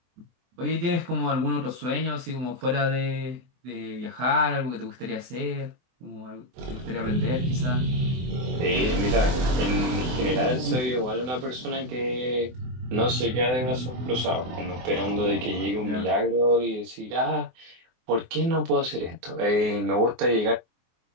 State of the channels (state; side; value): late; left; 24 ms